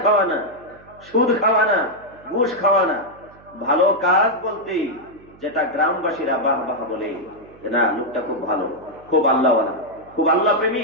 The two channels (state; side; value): noise; right; hum, 25 dB below the sound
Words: খাওয়া না, সুদ খাওয়া না, ঘুষ খাওয়া না। ভালো কাজ বলতে যেটা গ্রামবাসীরা বাহ বাহ বলে, না লোকটা খুব ভালো, খুব আল্লাহওয়ালা, খুব আল্লাহ